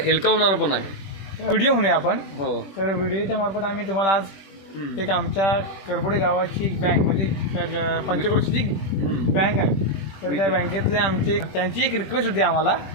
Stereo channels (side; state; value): right; late; 21 ms